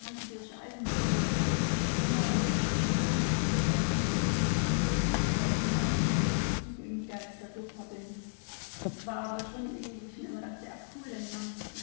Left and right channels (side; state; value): right; silent; digital silence